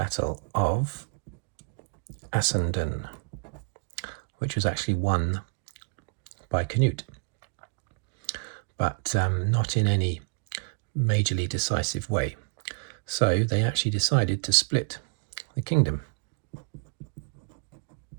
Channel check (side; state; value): left; quieter; 37.8 dB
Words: of Assendon, which was actually won by Canute, but not in any majorly decisive way. So they actually decided to split the kingdom.